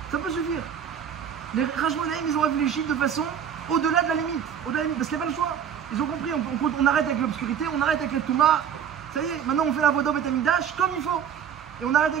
Ça peut suffire. Les Rashmonaïm, ils ont réfléchi de façon au-delà de la limite. Parce qu'il n'y a pas le choix. Ils ont compris, on arrête avec l'obscurité, on arrête avec les Touma. Ça y est, maintenant on fait la Voda Beth Amikdash comme il faut. Et on arrête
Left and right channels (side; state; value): left; quieter; 8.3 dB